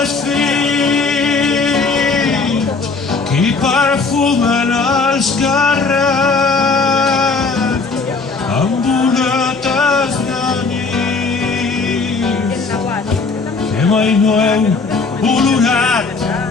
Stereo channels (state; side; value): quieter; right; 4.3 dB